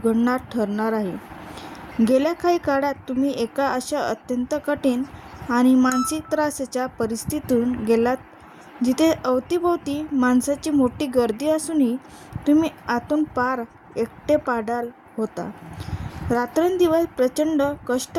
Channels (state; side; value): identical; both; correlation 1.00